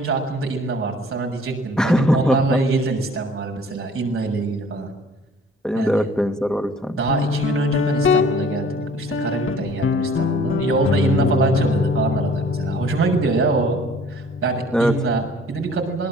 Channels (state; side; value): normal; both; correlation 0.52